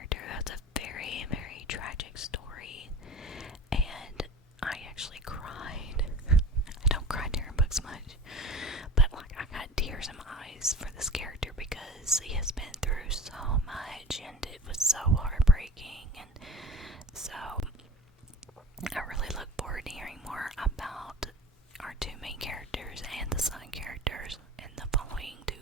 that's a very, very tragic story, and I actually cried. I don't cry during books much, but like, I got tears in my eyes for this character because he has been through so much, and it was so heartbreaking, and so I really look forward to hearing more about our two main characters and the side characters in the following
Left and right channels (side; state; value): both; normal; correlation 0.39